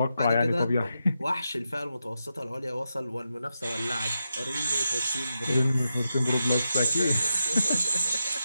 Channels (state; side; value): inverted; both; correlation -0.87